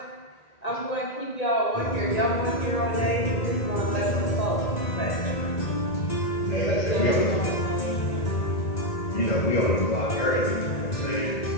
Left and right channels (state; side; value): late; right; 1.9 ms